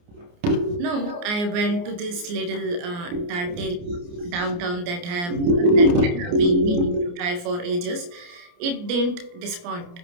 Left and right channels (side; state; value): left; late; 29 ms